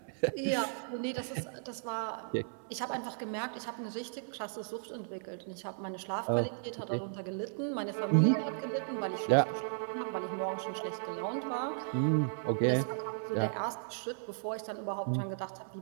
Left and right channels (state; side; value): silent; left; 54 dB below the other